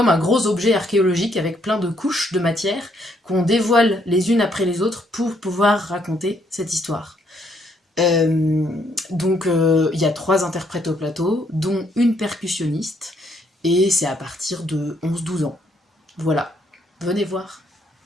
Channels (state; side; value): normal; both; correlation 0.71